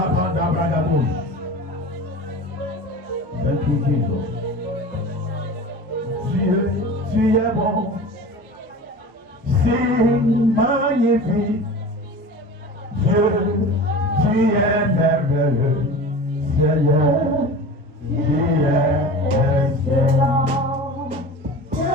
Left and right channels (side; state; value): both; normal; correlation 0.35